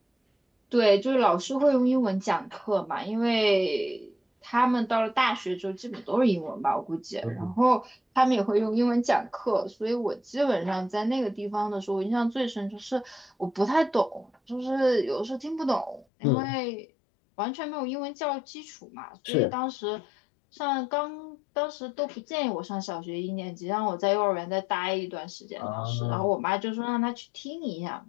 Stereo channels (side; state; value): right; drops out; at 16.1 s